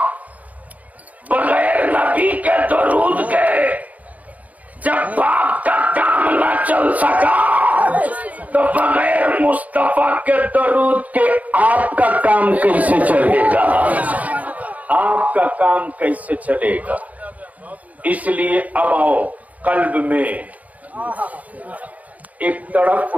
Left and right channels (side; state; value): left; late; 0.073 ms